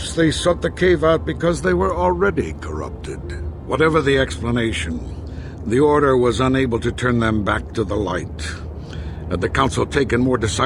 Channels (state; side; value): identical; both; correlation 1.00